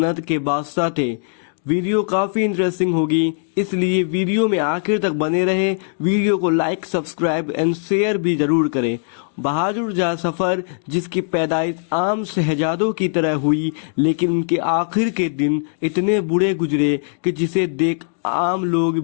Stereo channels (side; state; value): right; silent; digital silence